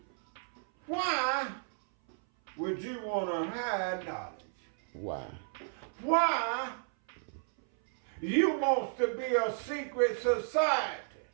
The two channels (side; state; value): left; silent; 56 dB below the other